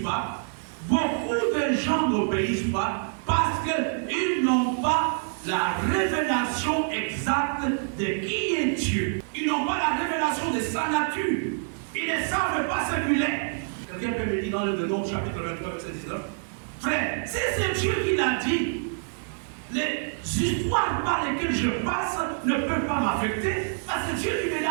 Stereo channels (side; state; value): left; silent; digital silence